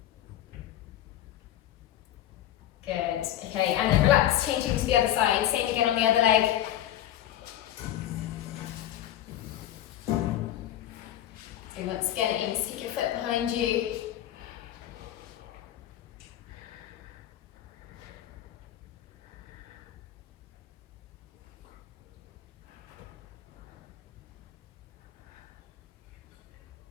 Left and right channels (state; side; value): quieter; right; 12.4 dB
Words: Good, okay, and then relax, changing to the other side, same again on the other leg. So once again, aim to stick your foot behind you.